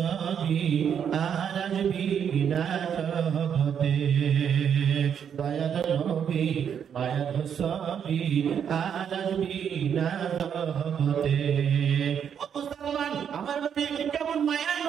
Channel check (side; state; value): left; quieter; 8.1 dB